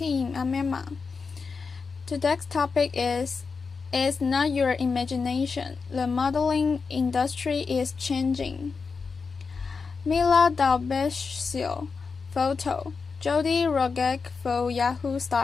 I'm Emma. Today's topic is It's not your imagination. The modeling industry is changing. Mila Dalbesio, photo. Jody Rogek for Yahoo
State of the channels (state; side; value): quieter; right; 4.9 dB